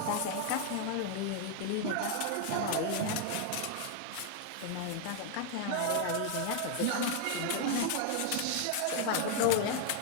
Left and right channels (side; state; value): both; different; correlation 0.00